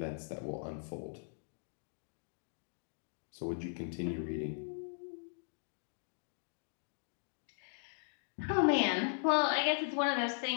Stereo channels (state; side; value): silent; right; digital silence